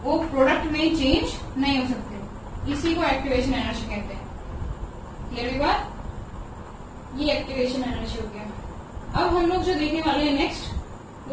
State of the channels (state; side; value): identical; both; correlation 1.00